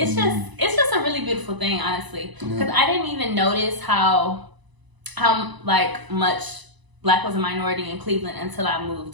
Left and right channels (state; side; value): late; left; 1.0 ms